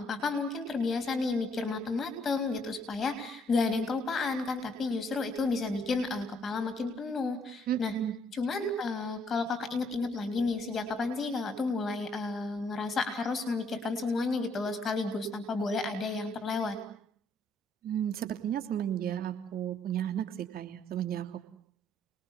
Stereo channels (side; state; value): both; normal; correlation 0.68